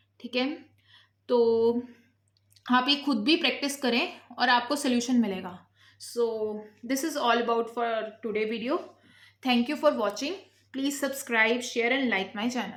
ठीक है। तो आप ये खुद भी प्रैक्टिस करें और आपको सोल्यूशन मिलेगा। सो this is all about for today video. Thank you for watching. Please subscribe, share and like my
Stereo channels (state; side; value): identical; both; correlation 1.00